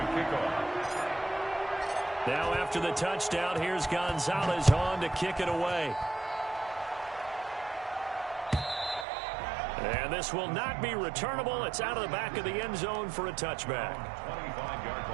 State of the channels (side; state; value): left; drops out; at 9.1 s